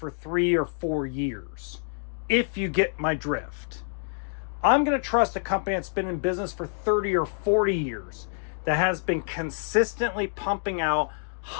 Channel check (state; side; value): silent; right; 60 dB below the other